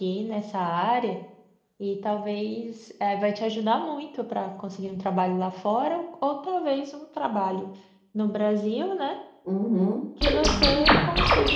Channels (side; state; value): both; identical; correlation 1.00